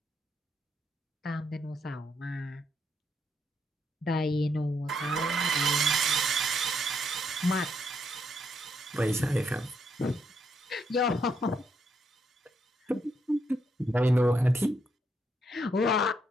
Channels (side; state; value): both; normal; correlation 0.76